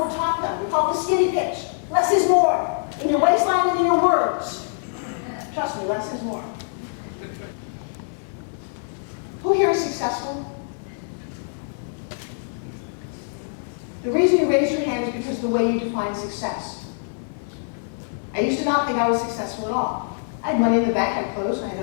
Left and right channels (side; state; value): right; silent; digital silence